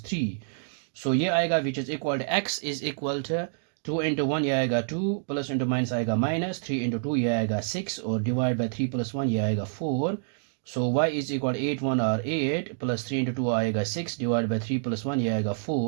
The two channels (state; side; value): silent; left; digital silence